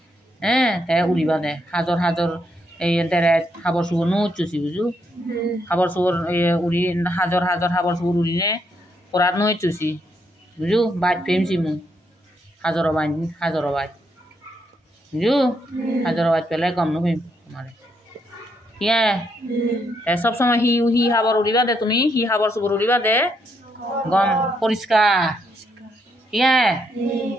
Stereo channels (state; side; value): normal; both; correlation 0.77